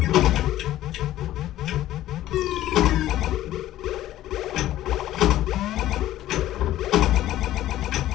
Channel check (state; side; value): quieter; right; 13.9 dB